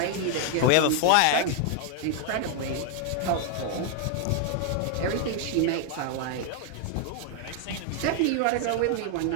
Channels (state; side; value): different; both; correlation 0.00